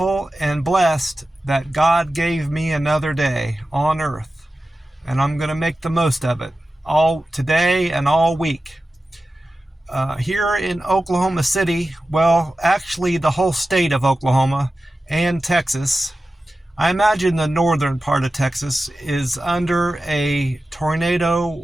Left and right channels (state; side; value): normal; both; correlation 0.94